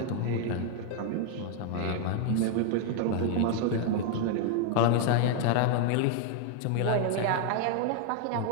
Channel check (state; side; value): different; both; correlation 0.00